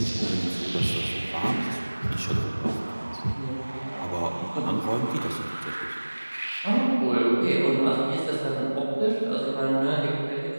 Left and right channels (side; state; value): both; inverted; correlation -1.00